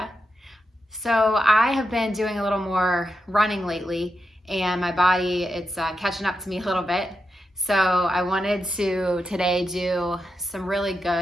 So I have been doing a little more running lately and my body, it's catching up to me a little bit. So I wanted to today do some really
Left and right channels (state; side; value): normal; both; correlation 0.87